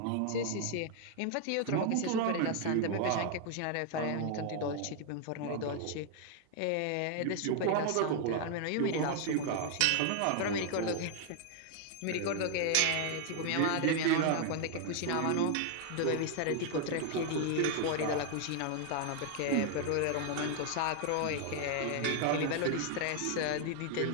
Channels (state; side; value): different; both; correlation 0.00